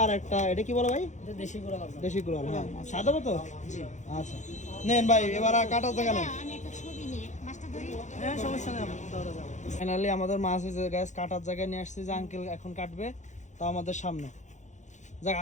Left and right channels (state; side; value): late; right; 0.35 ms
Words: আর একটা, এটা কি বলে ভাই? এটা দেশি কুরাল। দেশি কুরাল, হ্যাঁ। সাদা তো? আচ্ছা নেন ভাই, এবার আর কাটার জায়গা নেই। আমি একটা ছবি নিয়ে মাছটা ধরি। হ্যাঁ সমস্যা নেই, ফাইনালি আমাদের মাছ হয়েছে গ্যাস, কাটার জায়গায় নিয়ে আসছি, যে আঙ্কেল এখন কাটবে, তো আমাদের সামনে। যাক,